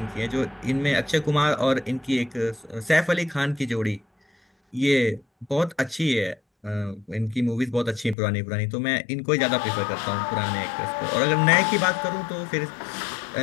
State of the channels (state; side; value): drops out; right; at 8.2 s